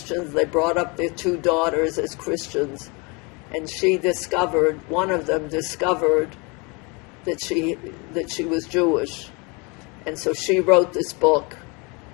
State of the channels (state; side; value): quieter; right; 29.6 dB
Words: They brought up their 2 daughters as Christians. And one of them discovered that she was Jewish. And so she wrote this book